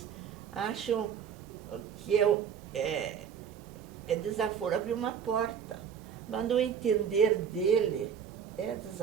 acham que é desaforo abrir uma porta, mas no entender dele é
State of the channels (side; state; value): left; quieter; 7.8 dB